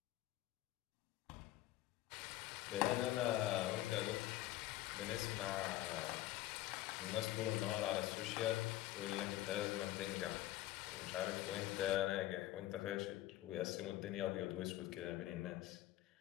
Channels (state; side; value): quieter; right; 15.1 dB